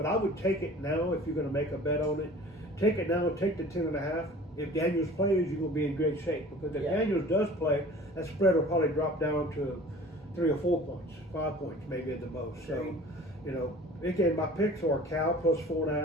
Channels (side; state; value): both; normal; correlation 0.45